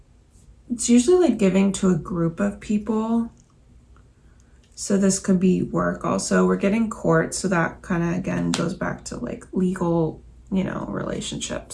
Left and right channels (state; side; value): identical; both; correlation 1.00